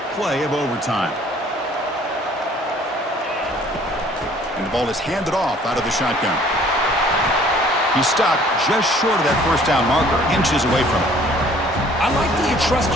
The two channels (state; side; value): normal; both; correlation 0.56